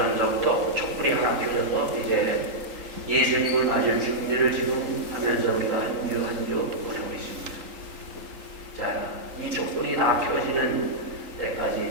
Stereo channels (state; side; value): late; left; 3.8 ms